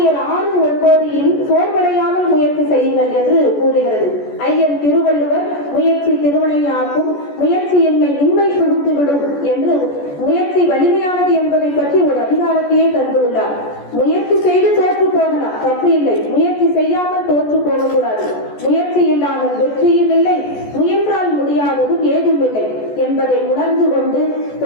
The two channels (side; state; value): right; late; 14 ms